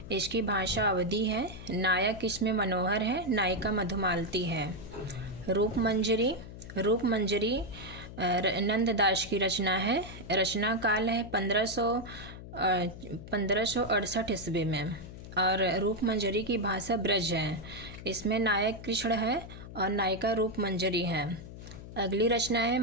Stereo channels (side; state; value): left; noise; hum, 13 dB below the sound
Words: इसकी भाषा अवधी है। नायक इसमें मनोहर है, नायिका मधुमालती है। रूप मंजरी नंददास की रचना है। रचना काल है 1568 ईस्वी में और रूप मंजरी की भाषा ब्रज है। इसमें नायक कृष्ण है और नायिका रूप मंजरी है। अगली रचना है